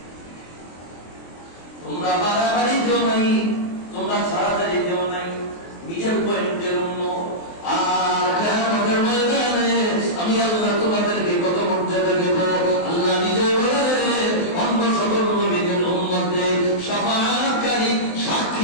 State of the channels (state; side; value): late; right; 23 ms